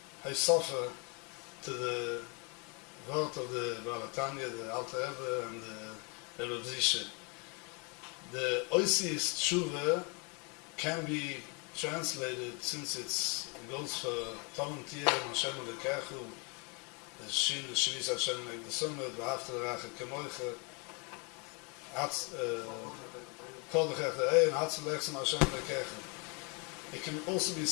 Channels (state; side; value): quieter; right; 33.0 dB